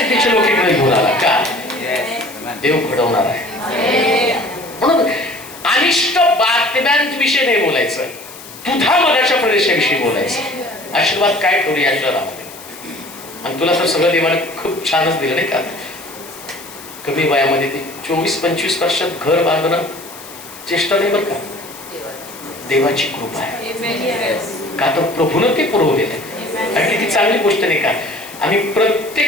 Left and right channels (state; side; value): noise; left; hiss, 16 dB below the sound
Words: लोक इकडे घेऊन आला का, देव घडवणार आहे. म्हणून अनिष्ट बातम्यांविषयी नाही बोलायचं, दुधामधाच्या प्रदेशाविषयी बोलायचं. आशीर्वाद काय ठेवले या शहरामध्ये. आणि तुला तर सगळं देवाने खूप छानच दिलं नाही का. कमी वयामध्ये ते 24-25 वर्षात घर बांधणं चेष्टा नाही बरं का. देवाची कृपा आहे का, तर प्रभूनं ते पुरवलेलं आहे. आणि किती चांगली गोष्ट नाही का. आम्ही